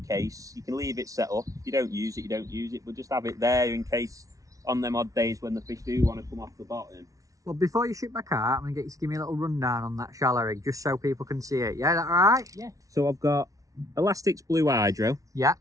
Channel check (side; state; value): left; late; 0.17 ms